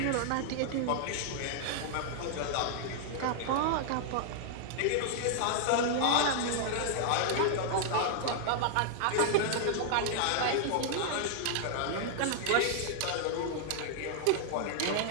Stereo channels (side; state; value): both; different; correlation -0.01